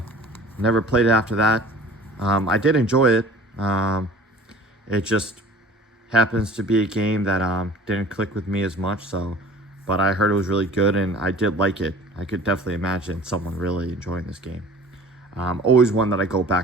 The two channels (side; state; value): both; normal; correlation 0.45